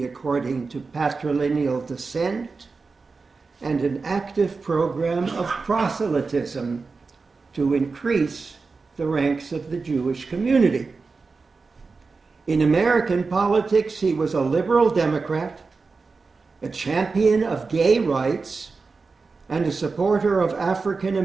according to patrilineal descent and an active program of proselytism to increase the ranks of the Jewish community. In American politics, he was a liberal Democrat, a champion of gay rights, and a supporter of African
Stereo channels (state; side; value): quieter; left; 4.3 dB